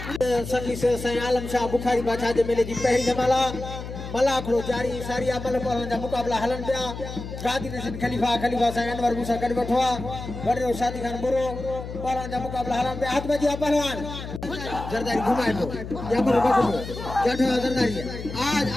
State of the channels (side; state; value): left; noise; hum, 9 dB below the sound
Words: सल्ली से सही आलम शाह बुखारी बादशाह जे मेले जी पहली जमाला मलाखड़ो जारी सारी अमल पहलवान जा मुकाबला हलन पिया गादी नसीब खलीफा सही अनवर मूसा कर बैठवा वडरो शादी खान बुरो पहलवान जा मुकाबला हलन पे हाथ में जी पहलवान जरदारी घुमाए दो या पर बैठो बैठो जरदारी आज